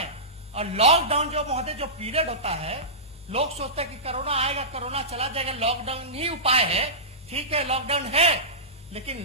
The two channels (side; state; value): both; normal; correlation -0.19